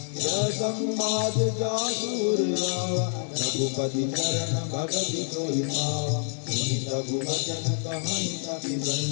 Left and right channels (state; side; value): silent; right; 60 dB below the other